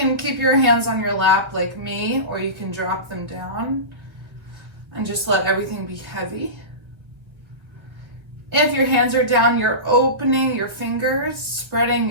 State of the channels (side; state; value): left; late; 1.4 ms